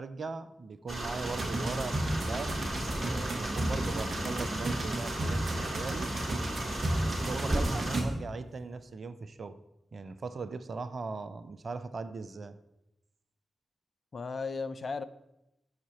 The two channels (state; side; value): normal; both; correlation 0.92